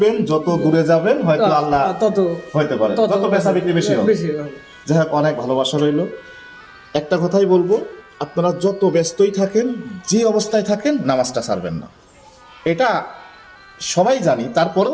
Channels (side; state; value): both; identical; correlation 1.00